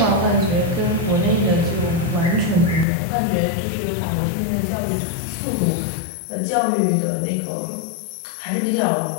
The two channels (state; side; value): drops out; right; at 2.9 s